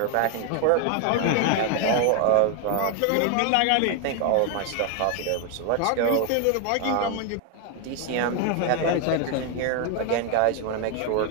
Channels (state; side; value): different; both; correlation 0.01